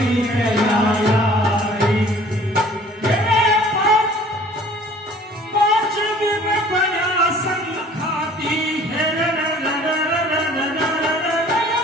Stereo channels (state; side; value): normal; both; correlation 0.51